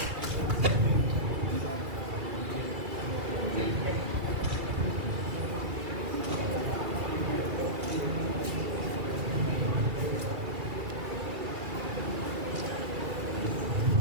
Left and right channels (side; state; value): left; late; 2.3 ms